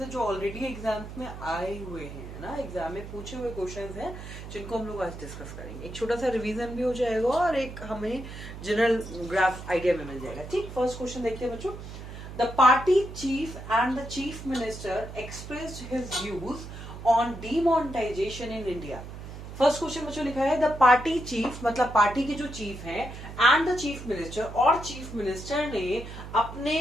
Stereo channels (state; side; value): noise; right; hum, 11 dB below the sound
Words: हैं जो ऑलरेडी एग्जाम्स में आए हुए हैं, है ना। एग्जाम में पूछे हुए क्वेश्चंस हैं जिनको हम लोग आज डिस्कस करेंगे। एक छोटा सा रिवीजन भी हो जाएगा और एक हमें जनरल ग्राफ आइडिया भी मिल जाएगा। ठीक, फर्स्ट क्वेश्चन देखिए बच्चों। The party chief and the chief minister expressed his views on demonetization in India. First question बच्चों लिखा है द पार्टी चीफ, मतलब पार्टी के जो चीफ हैं, एंड द चीफ मिनिस्टर, और चीफ मिनिस्टर ने